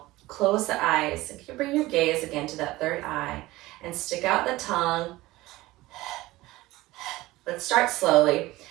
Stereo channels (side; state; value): left; quieter; 18.6 dB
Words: close the eyes, and you bring your gaze again to that third eye, and stick out the tongue, Let's start slowly.